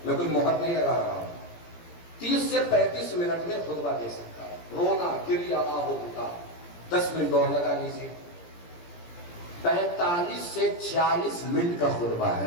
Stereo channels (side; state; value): right; late; 17 ms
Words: میں کوئی مہر نہیں لگا رہا ہوں. 30 سے 35 منٹ میں خطبہ دے سکتا ہے. رونا گریا آہو بکا 10 منٹ اور لگا لیجیے. 45 سے 40 منٹ کا خطبہ